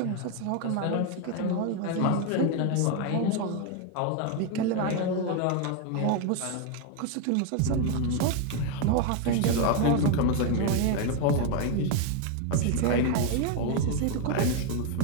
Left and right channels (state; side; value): different; both; correlation 0.01